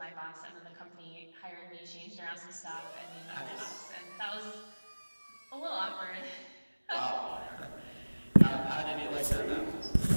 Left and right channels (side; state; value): both; inverted; correlation -1.00